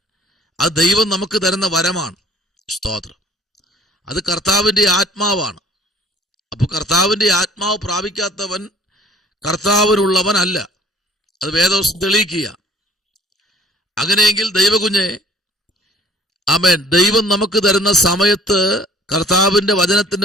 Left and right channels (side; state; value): both; normal; correlation 0.53